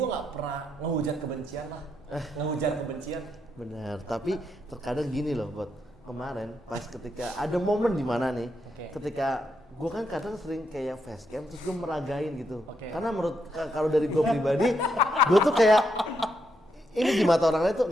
nggak pernah ngehujat kebencian lah. Ngehujat kebencian. Benar, tapi terkadang gini loh, buat kemarin pas ketika ada momen di mana nih, Oke. ketika gue kan kadang sering kayak facecam terus gue meragain gitu, Oke. karena menurut kalau dari gue pribadi, gue tuh kayak ini di mata orang lain tuh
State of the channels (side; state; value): both; normal; correlation 0.80